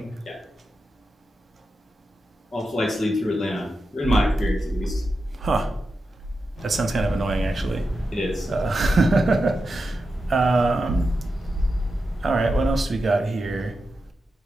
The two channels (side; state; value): both; normal; correlation 0.90